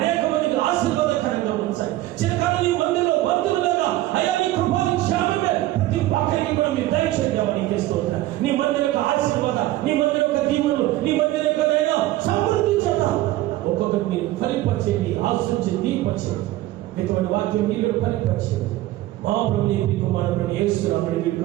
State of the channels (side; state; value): left; quieter; 16.0 dB